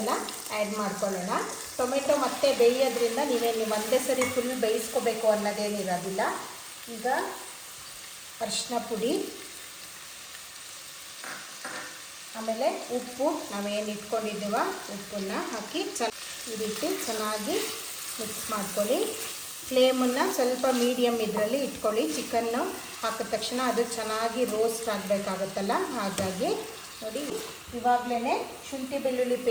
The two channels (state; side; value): identical; both; correlation 1.00